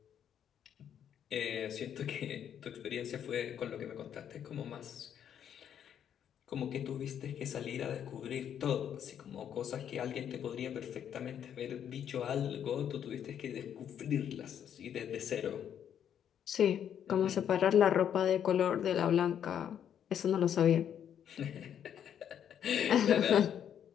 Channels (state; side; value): quieter; right; 9.2 dB